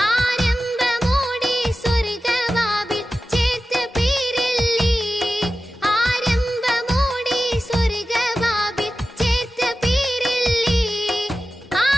ആരംഭമോടെ സ്വർഗവാവിൽ ചേർത്ത പേരല്ലേ. ആരംഭമോടെ സ്വർഗവാവിൽ ചേർത്ത പേരല്ലേ.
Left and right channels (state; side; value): normal; both; correlation 0.94